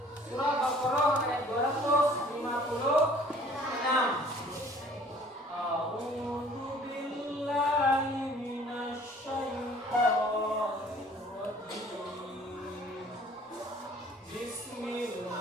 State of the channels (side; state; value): both; normal; correlation 0.53